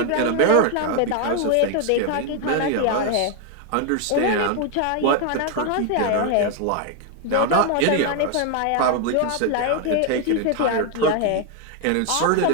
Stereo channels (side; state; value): both; different; correlation 0.01